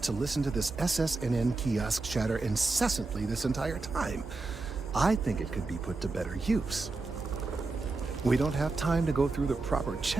to listen to this SSNN kiosk chatter incessantly this entire time. I think it could be put to better use. We don't have time to go through the proper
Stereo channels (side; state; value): left; quieter; 3.6 dB